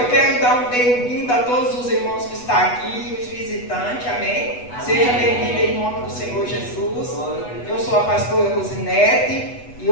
quero dar um bem-vindo a todos os irmãos que estão aqui, os visitantes, amém? Amém. Seja bem-vindo em nome do Senhor Jesus. Eu sou a pastora Rosinete e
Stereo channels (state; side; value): late; right; 8.1 ms